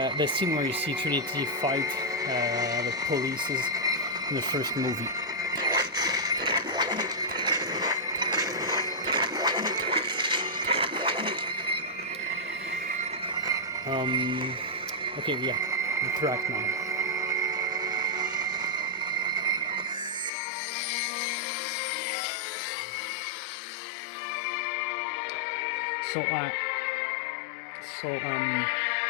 scene where you see Trinity fight the polices in the first movie. Okay, yeah, the track now. So,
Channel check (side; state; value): right; drops out; at 20.3 s